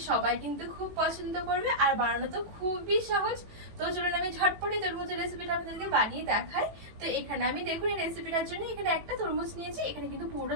সবাই কিন্তু খুব পছন্দ করবে আর বানানো তো খুবই সহজ। তো চলুন আমি ঝটপটে তরমুজের রেসিপিটা আপনাদেরকে বানিয়ে দেখাই। তো এখানে আমি দেখুন এই রেসিপিটার জন্য এখানে একটা তরমুজ নিয়েছি। এখানে কিন্তু পুরো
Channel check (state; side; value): late; left; 18 ms